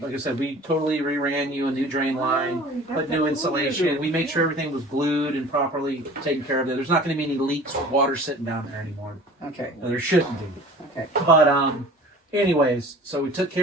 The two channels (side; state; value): both; normal; correlation 0.44